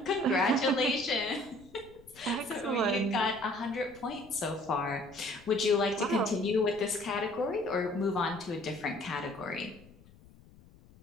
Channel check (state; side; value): noise; left; rumble, 24 dB below the sound